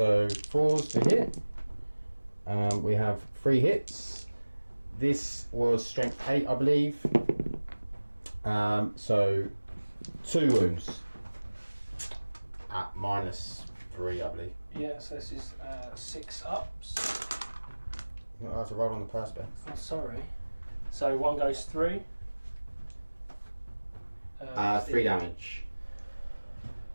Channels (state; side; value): inverted; both; correlation -1.00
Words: 4s to hit. We have 3 hits. This was strength 8, I believe. So 2 wounds at -3, I believe. Yeah, so this is 6 ups. I have to roll on the perspex. Oh, sorry. So 1 goes through. 3 damage.